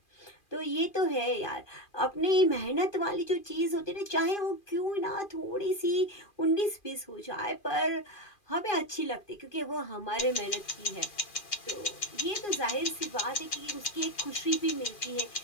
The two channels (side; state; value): right; late; 2.4 ms